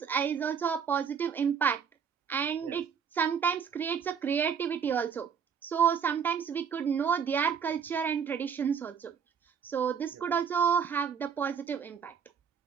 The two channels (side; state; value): left; quieter; 7.0 dB